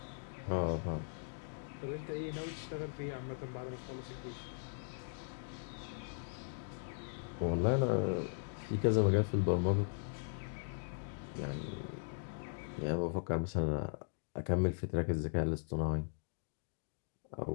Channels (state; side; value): silent; right; digital silence